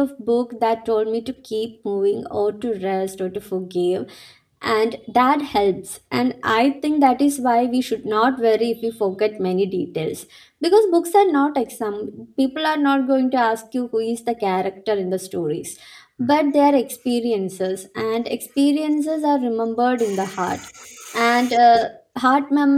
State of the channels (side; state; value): both; identical; correlation 1.00